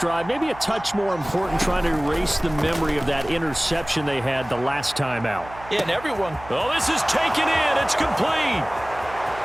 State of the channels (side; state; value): right; noise; hum, 17 dB below the sound